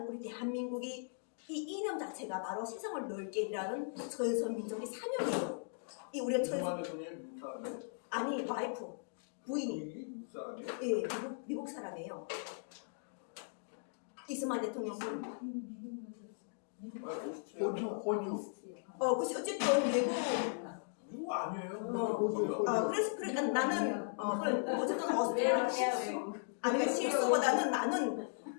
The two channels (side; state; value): right; silent; digital silence